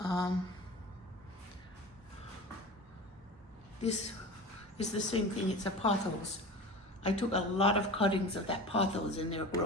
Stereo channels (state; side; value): normal; both; correlation 0.35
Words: This is the same thing, it's a pothos. I took a lot of cuttings of that pothos and they're